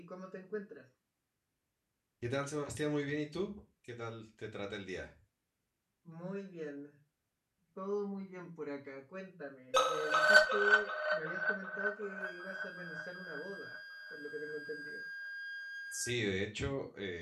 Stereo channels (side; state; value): both; identical; correlation 1.00